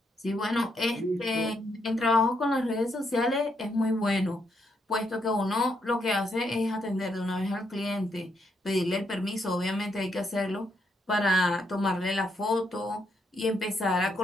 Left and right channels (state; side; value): normal; both; correlation 0.77